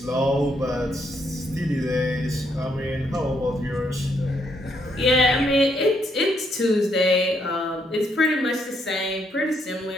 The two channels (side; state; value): both; normal; correlation 0.74